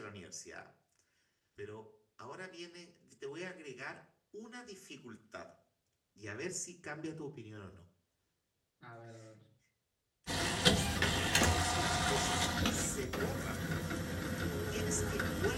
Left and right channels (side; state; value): both; identical; correlation 1.00